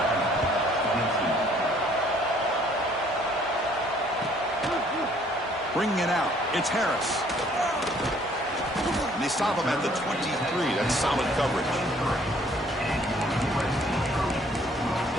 Bringing it out. It's Harris. And they stop him at the 23. That's solid coverage.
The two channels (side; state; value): both; normal; correlation 0.60